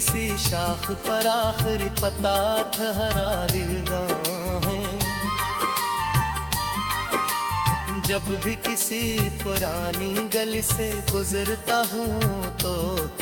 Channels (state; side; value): identical; both; correlation 1.00